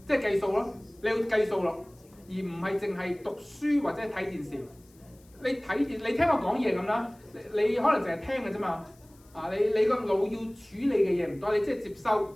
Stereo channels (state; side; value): noise; left; hiss, 30 dB below the sound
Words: 即係計數咯，你要計數咯，而唔係淨係讀書或者睇電視。你聽我講嘢咁啦，你可能淨係聽嘅啫嘛。你個腦要處理嘅嘢唔多，你即係接收